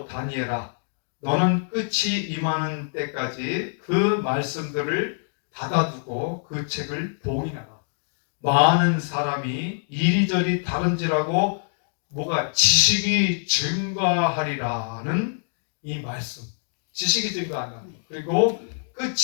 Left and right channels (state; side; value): silent; right; digital silence